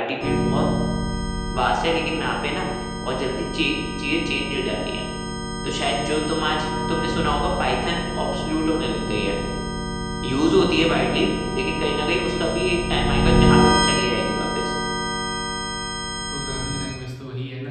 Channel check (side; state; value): both; identical; correlation 1.00